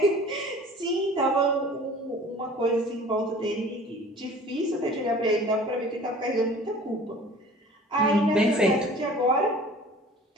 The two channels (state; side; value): normal; both; correlation 0.45